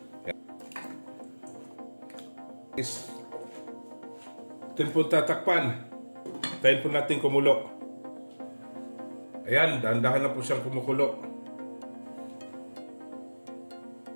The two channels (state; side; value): inverted; both; correlation -1.00